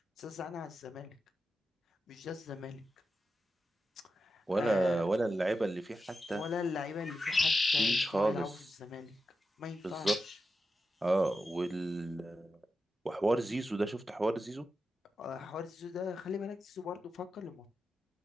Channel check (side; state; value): both; normal; correlation 0.89